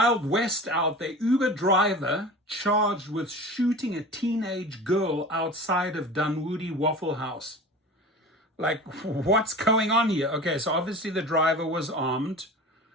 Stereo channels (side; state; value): both; normal; correlation 0.36